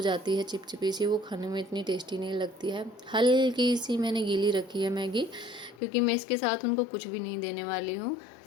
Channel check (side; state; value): right; drops out; at 5.8 s